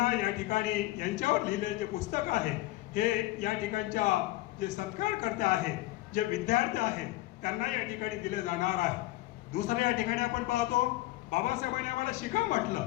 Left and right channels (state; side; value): quieter; right; 17.9 dB